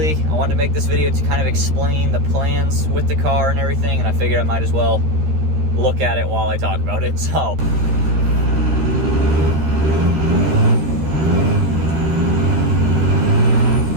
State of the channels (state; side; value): late; left; 13 ms